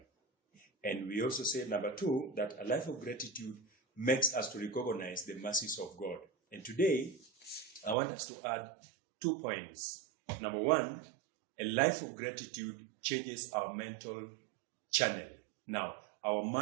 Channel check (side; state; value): left; drops out; at 8.0 s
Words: And we also said, number 2, that a life of gratitude makes us to recognize the mercies of God. And today, I want us to add 2 points. Number 1, a life of gratitude changes our mental channel. Now, our